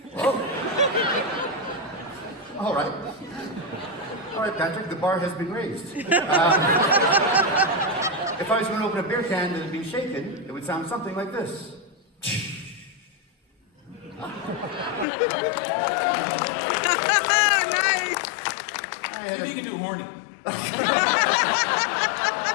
Oh. All right. All right, Patrick, the bar has been raised. If I was going to open a beer can that had been shaken, it would sound something like this. Nice! I think you can do horny.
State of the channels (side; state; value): right; drops out; at 15.1 s